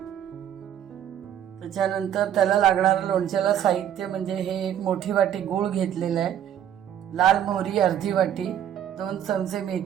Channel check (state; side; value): quieter; left; 10.2 dB